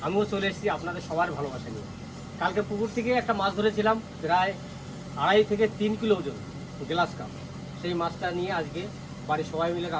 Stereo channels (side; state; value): both; identical; correlation 1.00